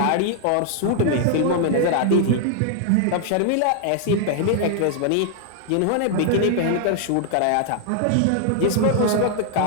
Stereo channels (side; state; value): both; different; correlation -0.01